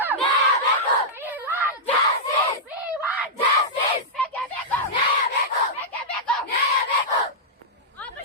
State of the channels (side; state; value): both; normal; correlation -0.10